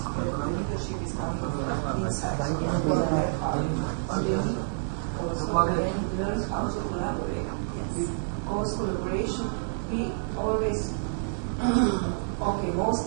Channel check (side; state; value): left; silent; 59 dB below the other